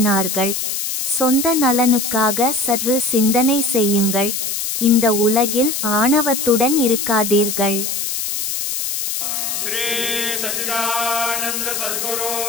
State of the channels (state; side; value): noise; left; hiss, 2 dB below the sound